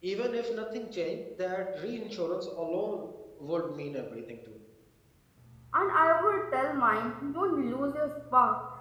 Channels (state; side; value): identical; both; correlation 1.00